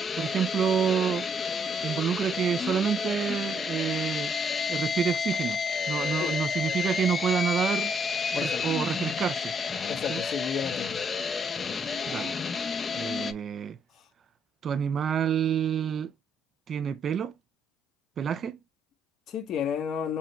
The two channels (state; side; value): normal; both; correlation 0.72